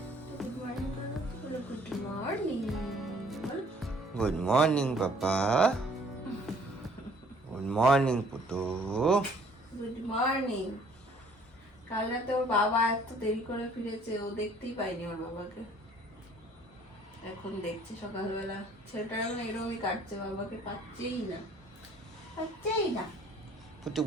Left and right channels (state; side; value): normal; both; correlation 0.57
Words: good morning papa, good morning Putu. Good morning. কাল রাতে ওর বাবা এত দেরি করে ফিরেছে, ও দেখতেই পাইনি ওর বাবাকে। এখন দেখছে সকালবেলা, ছেলেটা এখন এরকমই কাটছে, বাবাকে পাচ্ছেই না। পুটু